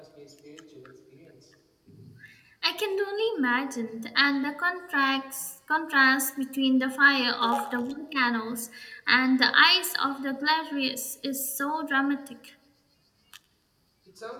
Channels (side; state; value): both; identical; correlation 1.00